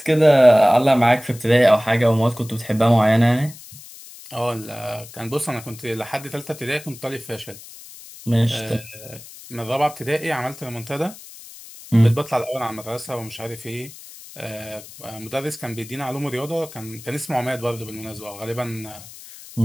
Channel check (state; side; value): noise; left; hiss, 17 dB below the sound